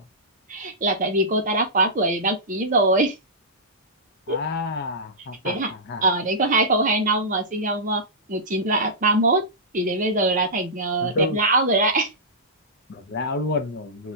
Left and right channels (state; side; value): normal; both; correlation -0.16